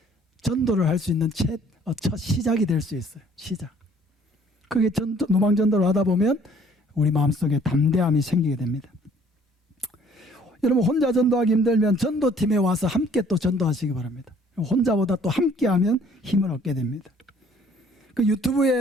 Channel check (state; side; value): normal; both; correlation 0.58